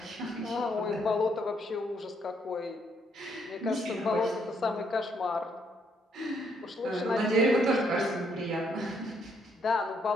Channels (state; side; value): normal; both; correlation 0.72